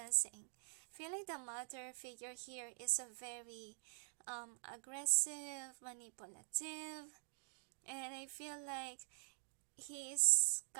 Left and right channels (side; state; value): left; silent; digital silence